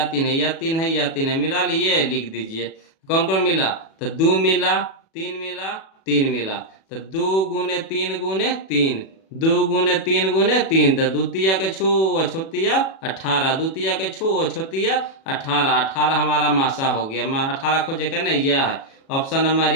3 है, यह 3 है यह 3 है, मिला लिए, लिख दीजिए। कौन कौन मिला, तो 2 मिला 3 मिला 3 मिला, तो 2 गुने 3 गुने 3, 2 गुने 3 गुने 3, तो द्वितीय के छो अछोतिया 18, द्वितीय के छो अछोतिया 18, 18 हमारा मासा हो गया। 18 खोजे का नहीं, यह है ऑप्शन नंबर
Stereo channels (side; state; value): right; late; 37 ms